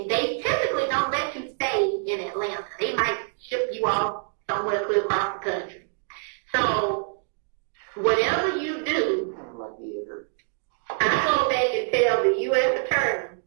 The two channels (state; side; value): silent; left; digital silence